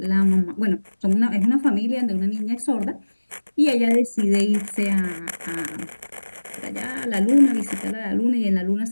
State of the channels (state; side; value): inverted; both; correlation -1.00